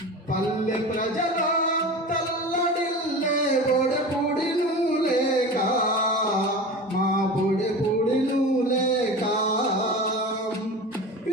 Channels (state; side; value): normal; both; correlation 0.32